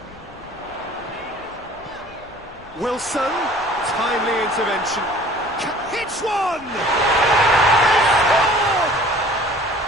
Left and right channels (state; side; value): noise; left; rumble, 24 dB below the sound